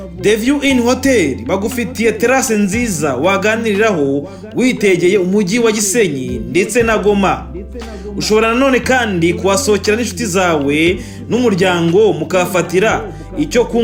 The View Inn Hotel bagufitiye terrasse nziza waganiriraho witegeye umujyi wa Gisenyi ndetse na Goma. Ushobora nanone kandi kuhasohokera n'inshuti zawe n'umuryango mukafatira icyo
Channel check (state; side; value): identical; both; correlation 1.00